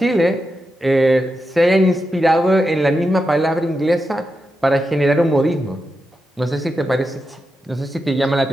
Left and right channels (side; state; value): both; normal; correlation 0.88